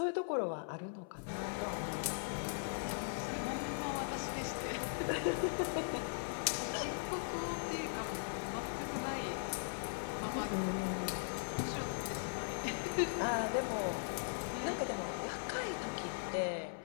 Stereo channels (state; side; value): silent; right; 51 dB below the other